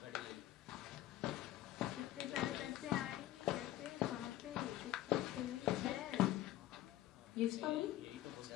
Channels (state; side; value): quieter; right; 14.5 dB